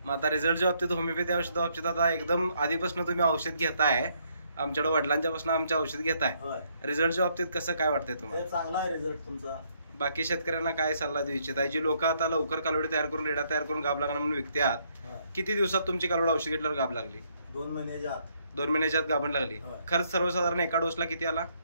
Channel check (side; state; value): both; inverted; correlation -0.71